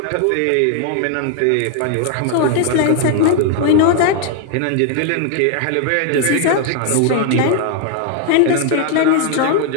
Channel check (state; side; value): different; both; correlation 0.00